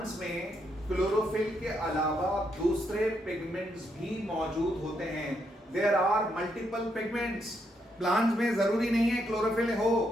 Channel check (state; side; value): normal; both; correlation 0.77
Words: में क्लोरोफिल के अलावा दूसरे पिगमेंट्स भी मौजूद होते हैं। There are multiple pigments. Plants में जरूरी नहीं है क्लोरोफिल हो,